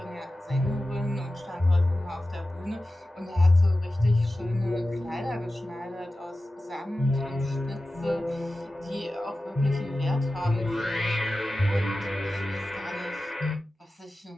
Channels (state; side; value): normal; both; correlation 0.95